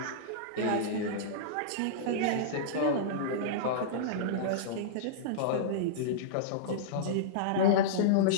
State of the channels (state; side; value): different; both; correlation -0.03